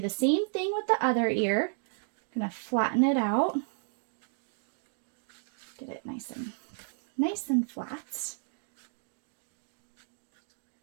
the same thing with the other ear. I'm going to flatten it out. Get it nice and flat.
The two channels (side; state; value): left; silent; digital silence